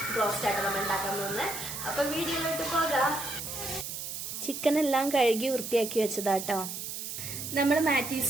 ബ്രോസ്റ്റ് ആയിട്ട് നമ്മൾ ഉണ്ടാക്കാൻ പോകുന്നത്. അപ്പൊ വീഡിയോയിലോട്ട് പോകാം. ചിക്കൻ എല്ലാം കഴുകി വൃത്തിയാക്കി വെച്ചതാട്ടോ. നമ്മൾ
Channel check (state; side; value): noise; right; hiss, 6 dB below the sound